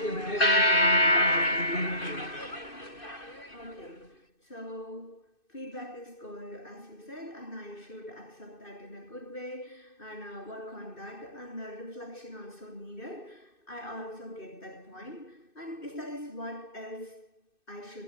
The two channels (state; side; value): late; right; 2.6 ms